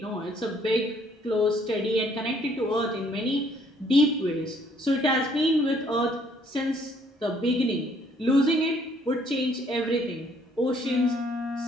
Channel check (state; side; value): normal; both; correlation 0.64